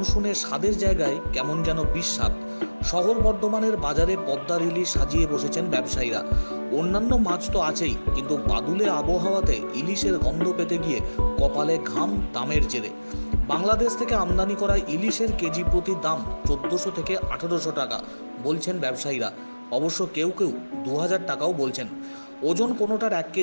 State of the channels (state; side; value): inverted; both; correlation -1.00